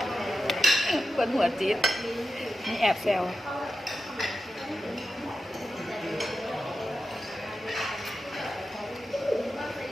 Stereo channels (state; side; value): normal; both; correlation 0.91